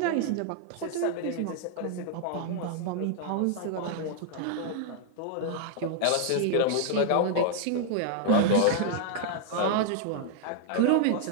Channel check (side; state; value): both; different; correlation -0.01